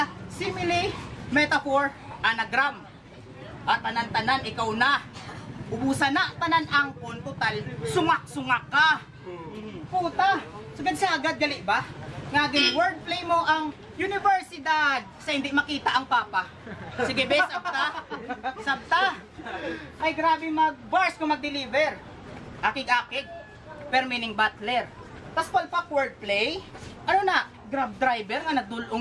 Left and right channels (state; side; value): identical; both; correlation 1.00